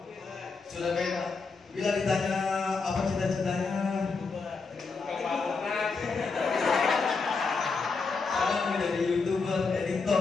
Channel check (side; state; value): right; quieter; 4.5 dB